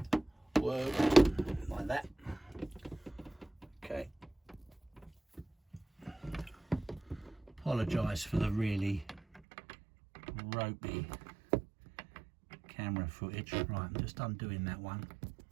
work like that. Okay. Apologise for the really ropey camera footage. Right, I'm just undoing that one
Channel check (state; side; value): drops out; left; at 9.4 s